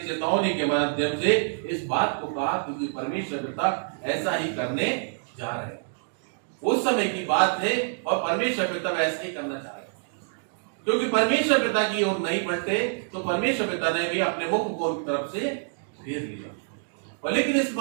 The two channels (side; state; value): left; silent; digital silence